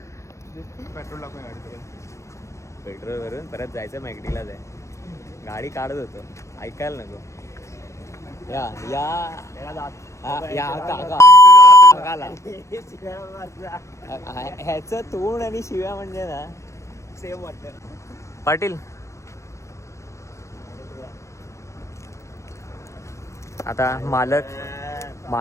पेट्रोल टाकून गाडी पेट्रोल भरून परत जायचं मॅगडीलाच आहे गाडी काढत होतो ऐकायला नको या काकाला ह्याचं तोंड आणि शिव्या म्हणजे ना सेम वाटतं पाटील आता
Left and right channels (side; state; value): right; late; 0.15 ms